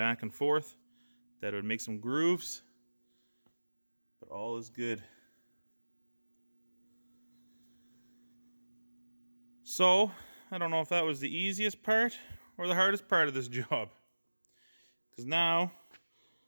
and forth that it would make some grooves, but all is good. So, I don't know if that was the easiest part or the hardest part of this job. Because now,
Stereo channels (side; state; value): both; inverted; correlation -1.00